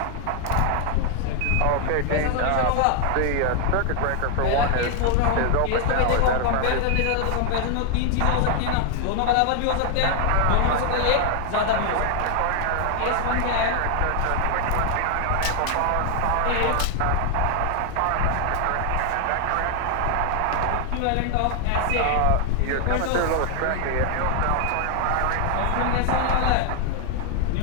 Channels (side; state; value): both; different; correlation 0.00